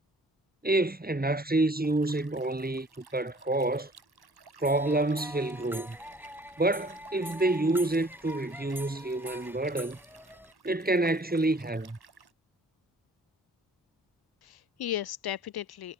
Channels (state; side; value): normal; both; correlation 0.54